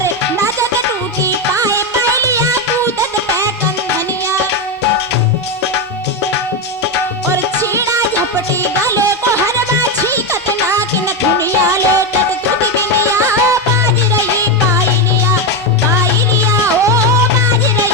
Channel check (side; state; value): both; normal; correlation 0.10